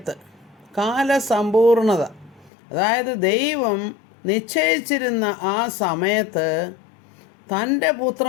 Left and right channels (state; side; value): drops out; right; at 2.5 s